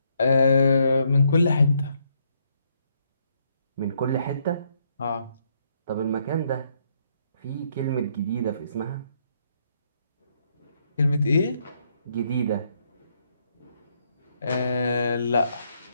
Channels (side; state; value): both; inverted; correlation -0.73